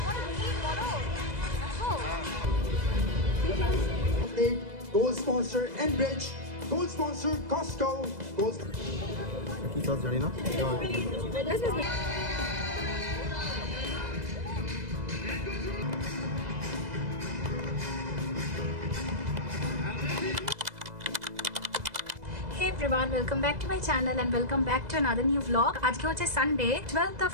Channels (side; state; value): left; late; 2.0 ms